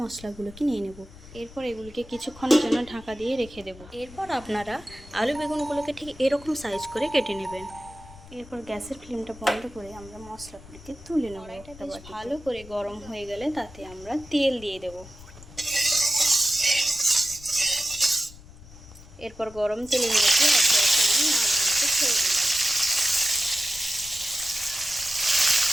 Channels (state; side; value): noise; left; rumble, 19 dB below the sound